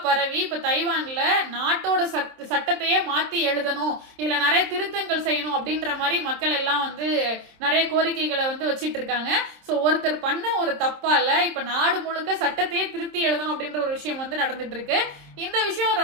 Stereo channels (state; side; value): late; left; 26 ms